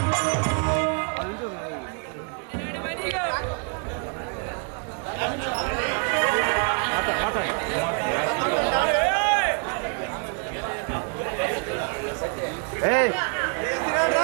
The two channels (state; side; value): quieter; left; 38.6 dB